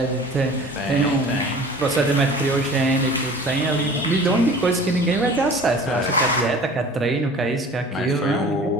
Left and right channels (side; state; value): both; normal; correlation 0.44